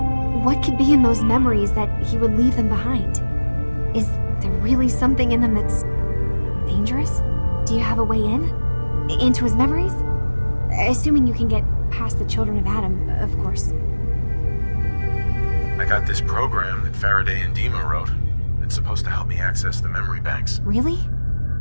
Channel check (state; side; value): inverted; both; correlation -1.00